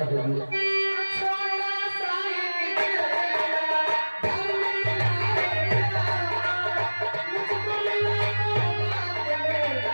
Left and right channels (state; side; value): inverted; both; correlation -1.00